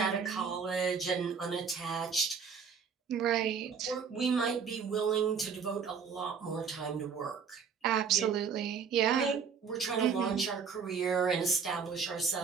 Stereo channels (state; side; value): quieter; left; 6.3 dB